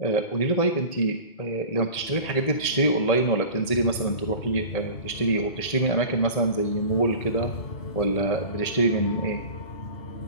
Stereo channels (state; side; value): late; right; 1.8 ms